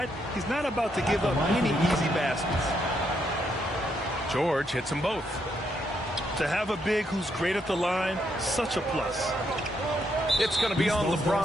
He's not about to give up any easy baskets. George hits them both. To have a big who's great at the line, such a plus. It's going to be on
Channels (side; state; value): both; normal; correlation 0.77